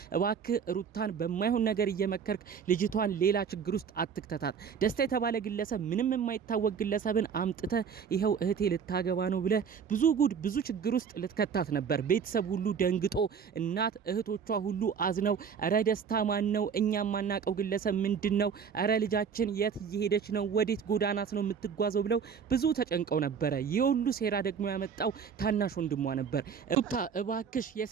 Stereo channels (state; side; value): quieter; left; 6.7 dB